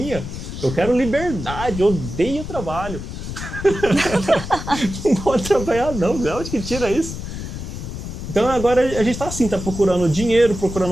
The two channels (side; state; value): left; noise; rumble, 8 dB below the sound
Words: Eu quero liberdade, eu odeio trabalho. Não pode trabalhar não, de onde que tira isso? Então agora a gente tá assim, tá procurando dinheiro,